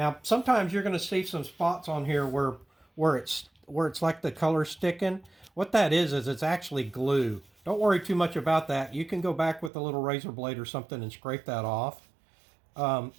sometimes you're going to see some spots on here where it's like the color sticking. What that is it's actually glue. Don't worry too much about that. You can go back with a little razor blade or something and scrape that off.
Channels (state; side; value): drops out; left; at 9.7 s